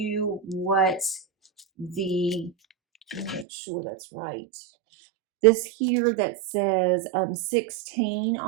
what the, let me make sure that's right. This here that says 16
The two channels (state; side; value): drops out; left; at 3.5 s